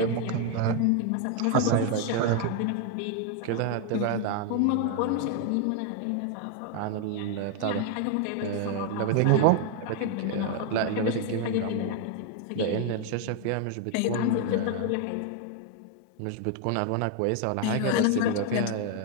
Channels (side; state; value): both; different; correlation 0.01